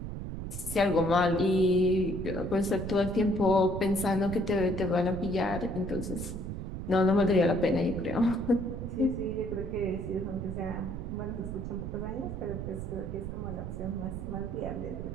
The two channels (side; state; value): right; noise; rumble, 6 dB below the sound